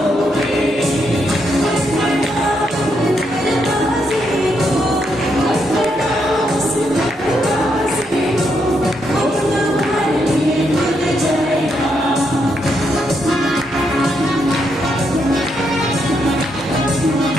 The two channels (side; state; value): both; normal; correlation 0.79